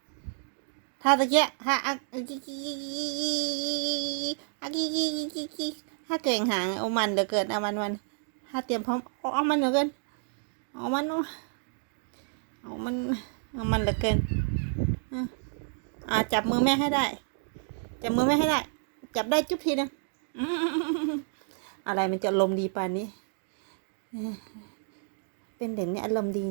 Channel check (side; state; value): left; silent; digital silence